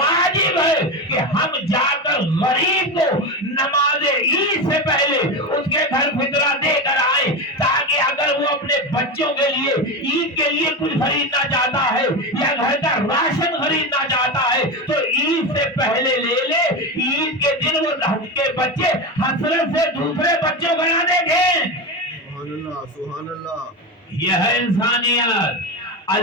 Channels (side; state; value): both; normal; correlation 0.19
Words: ہے کہ ہم جا کر غریب کو نماز عید سے پہلے اس کے گھر فطرہ دے کر آئے، تاکہ اگر وہ اپنے بچوں کے لیے عید کے لیے کچھ خریدنا چاہتا ہے یا گھر کا راشن خریدنا چاہتا ہے تو عید سے پہلے لے لے، عید کے دن وہ کے بچے حسرت سے دوسرے بچوں کو نہ دیکھیں۔ سبحان اللہ، سبحان اللہ۔ یہ ہے انسانیت۔